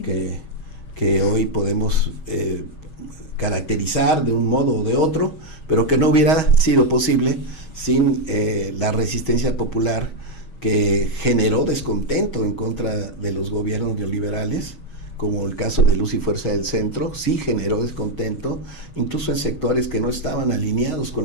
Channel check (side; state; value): right; late; 6.3 ms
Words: Que hoy podemos caracterizar de un modo o de otro, pero que no hubiera sido posible sin la resistencia popular, que generó descontento en contra de los gobiernos neoliberales, como el caso de Luz y Fuerza del Centro. Sí generó descontento, incluso en sectores que no estaban alineados